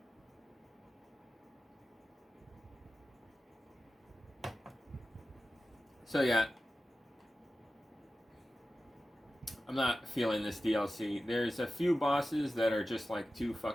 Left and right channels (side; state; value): both; normal; correlation 0.94